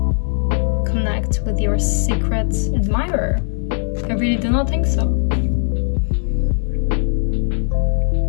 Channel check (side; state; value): right; silent; 57 dB below the other